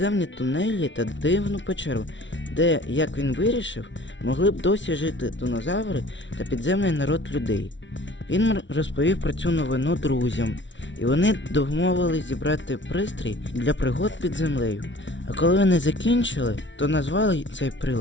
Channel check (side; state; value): right; late; 0.55 ms